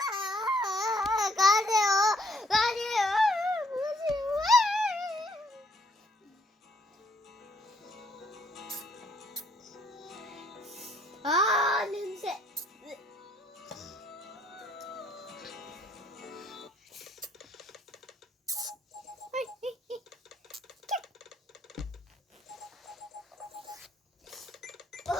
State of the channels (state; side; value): normal; both; correlation 0.69